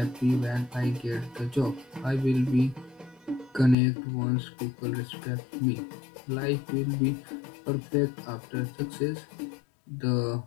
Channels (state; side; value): drops out; right; at 3.8 s